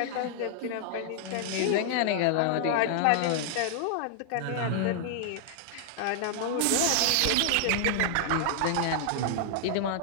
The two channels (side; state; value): both; different; correlation -0.01